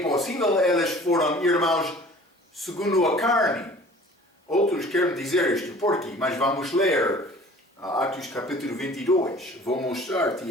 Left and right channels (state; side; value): normal; both; correlation 0.47